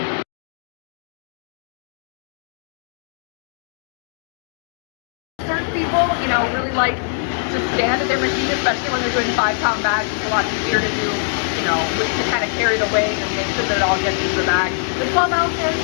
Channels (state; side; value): silent; right; digital silence